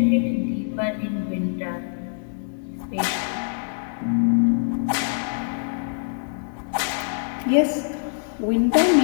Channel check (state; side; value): silent; right; 63 dB below the other